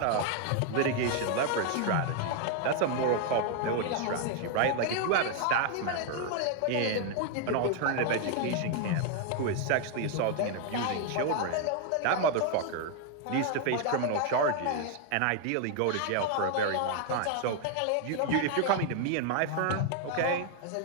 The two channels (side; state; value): both; different; correlation 0.00